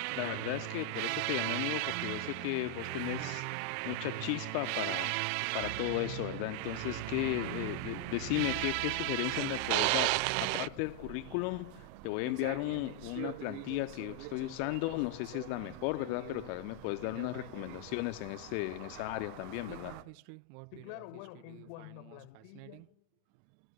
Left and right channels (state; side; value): different; both; correlation 0.00